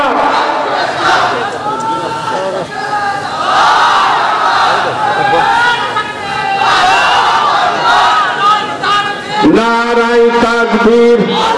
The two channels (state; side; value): identical; both; correlation 1.00